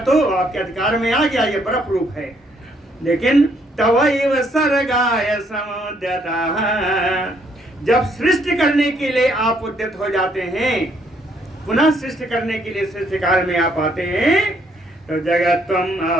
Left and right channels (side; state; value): both; normal; correlation 0.69